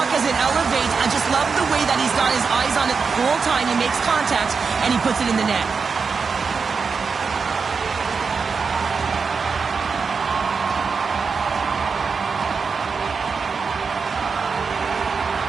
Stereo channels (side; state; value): left; quieter; 5.2 dB